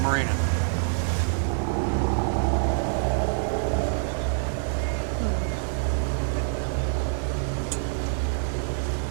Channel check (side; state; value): left; silent; 56 dB below the other